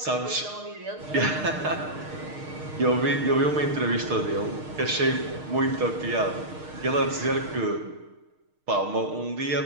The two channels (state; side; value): late; left; 6.5 ms